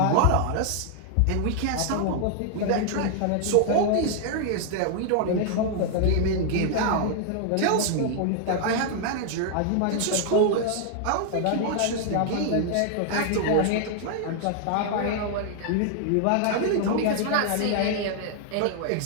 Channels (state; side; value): different; both; correlation 0.00